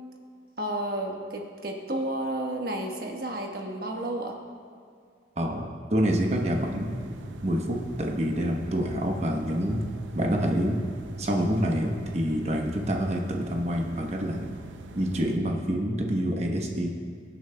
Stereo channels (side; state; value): both; normal; correlation 0.72